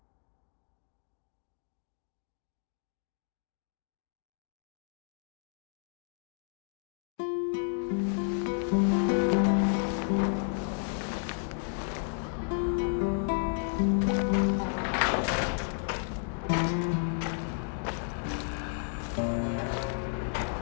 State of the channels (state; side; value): silent; right; digital silence